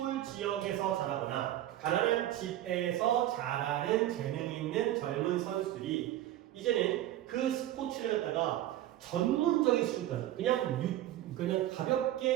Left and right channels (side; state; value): left; quieter; 13.4 dB